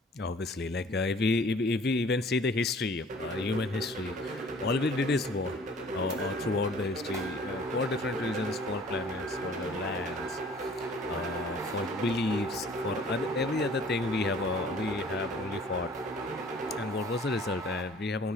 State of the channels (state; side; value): normal; both; correlation 0.52